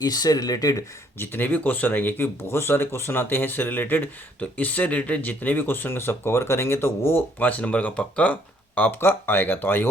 इससे रिलेटेड जितने भी क्वेश्चन आएंगे, क्योंकि बहुत सारे क्वेश्चन आते हैं इससे रिलेटेड, तो इससे रिलेटेड जितने भी क्वेश्चन का सब कवर करेंगे तो वो 5 नंबर का पक्का आपका आएगा। तो आई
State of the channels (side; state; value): both; normal; correlation 0.65